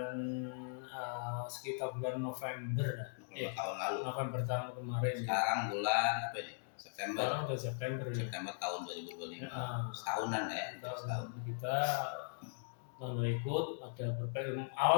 sekitar bulan November tahun kemarin. Sekarang bulan apa ini? September. Sekarang udah September tahun 2025. Setahunan ya. Setahun kita ikut ada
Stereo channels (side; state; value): right; silent; digital silence